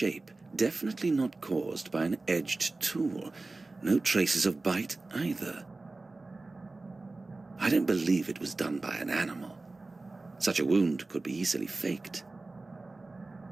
definitely not caused by an edged tool. No traces of bite either. I don't believe it was done by an animal. Such a wound could be easily faked.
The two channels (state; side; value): quieter; left; 3.3 dB